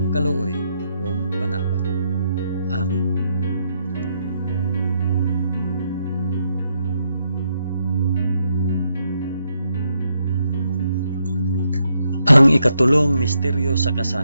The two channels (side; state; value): both; inverted; correlation -0.78